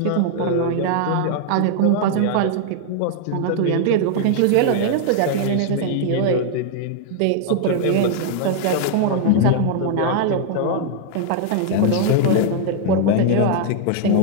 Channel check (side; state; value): both; different; correlation 0.00